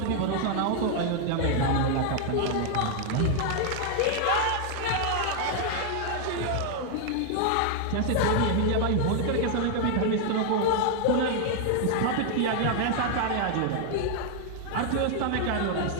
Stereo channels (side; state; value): both; different; correlation 0.00